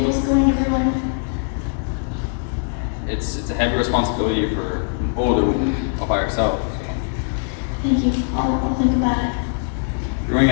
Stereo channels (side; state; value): right; silent; 65 dB below the other